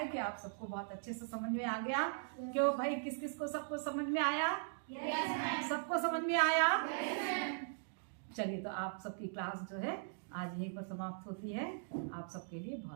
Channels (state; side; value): silent; left; digital silence